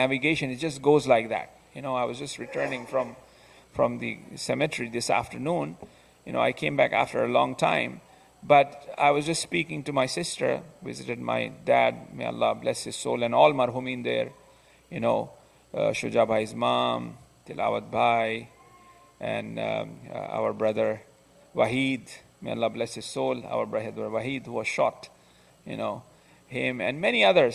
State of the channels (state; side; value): identical; both; correlation 1.00